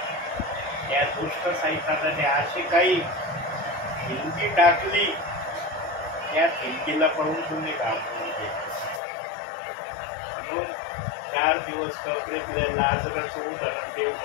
त्या दुष्ट सैतानाने अशी काही हिंदी टाकली, त्या हिंदीला पाहून तुम्ही घाबरून गेले. म्हणून 4 दिवस कबरेतल्या लाजराचं उदाहरण देव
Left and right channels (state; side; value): drops out; right; at 9.0 s